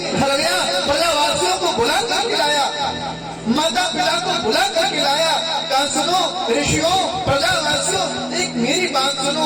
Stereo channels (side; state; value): both; identical; correlation 1.00